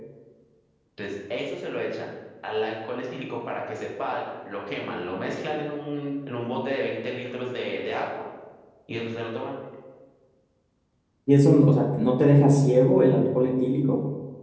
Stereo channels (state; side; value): identical; both; correlation 1.00